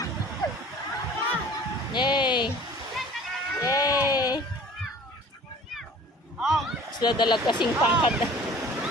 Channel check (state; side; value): normal; both; correlation 0.47